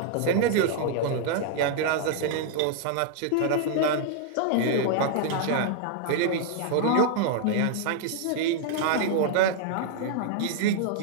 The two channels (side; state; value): both; different; correlation 0.00